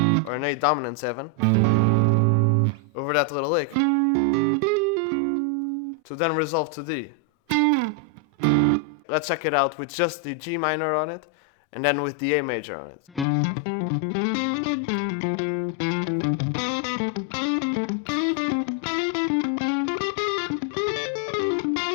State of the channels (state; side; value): drops out; right; at 13.2 s